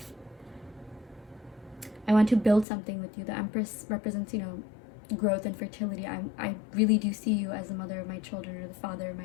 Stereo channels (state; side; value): drops out; right; at 2.7 s